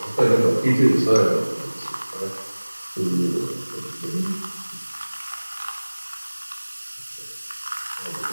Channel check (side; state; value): both; inverted; correlation -1.00